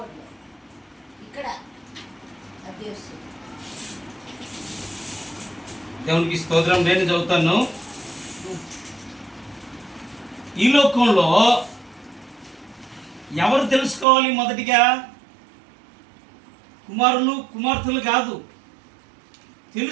దేవునికి స్తోత్రం. నేను చదువుతాను. ఈ లోకంలో ఎవరు తెలుసుకోవాలి? మొదటిగా కుమారులు కుమార్తెలు కాదు,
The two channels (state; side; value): drops out; left; at 14.1 s